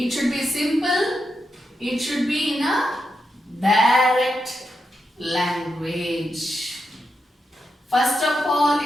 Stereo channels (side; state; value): both; normal; correlation 0.85